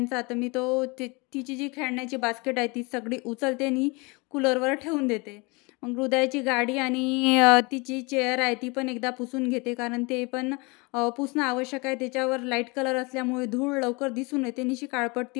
तर मी तिची जी खेळण्याची बास्केट आहे ती सगळी उचलते आणि कूलरवर ठेवून देते. मग हृदयाची गाडी आणि तिची चेअर आहे ती पण एकदा पुसून घेते, कारण ते पण पुसणं आवश्यक आहे. त्याच्यावर लाईट कलर असल्यामुळे धूळ लवकर दिसून येते आणि अशी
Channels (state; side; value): quieter; right; 27.8 dB